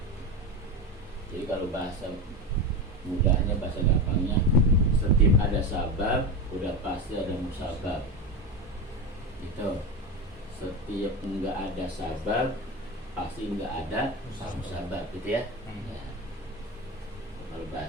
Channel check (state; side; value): normal; both; correlation 0.20